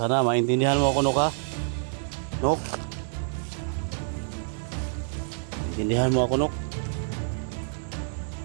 Sana maintindihan mo ako, Nok, ha? Nok? Maintindihan mo ako, Nok?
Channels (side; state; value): left; silent; digital silence